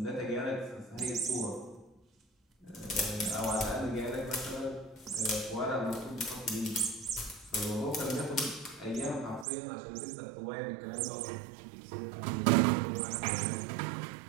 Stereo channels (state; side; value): drops out; left; at 9.5 s